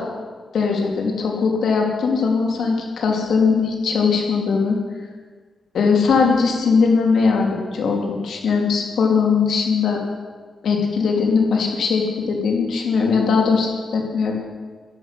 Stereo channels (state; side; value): quieter; right; 4.8 dB